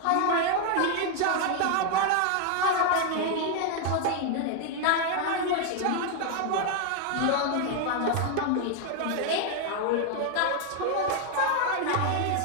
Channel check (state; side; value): different; both; correlation 0.00